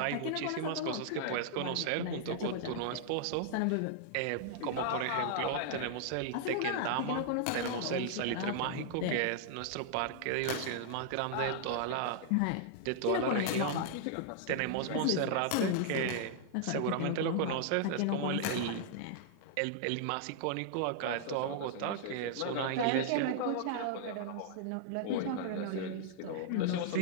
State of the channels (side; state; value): both; different; correlation -0.01